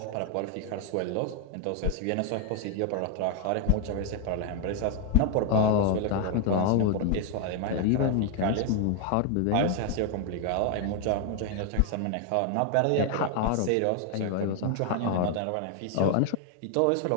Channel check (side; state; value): both; different; correlation 0.00